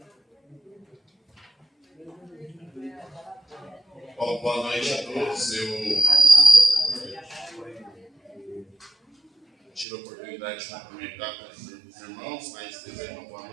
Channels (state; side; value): drops out; left; at 9.9 s